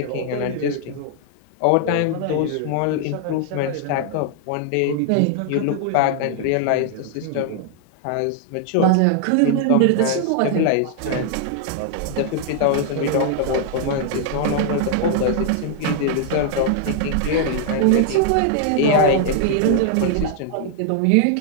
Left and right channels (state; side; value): different; both; correlation 0.00